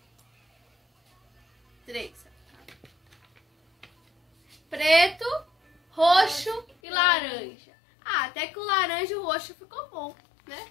3. Preto, roxo e laranja. Ah, até que o laranja e o roxo ficou bom,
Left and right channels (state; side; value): drops out; right; at 6.8 s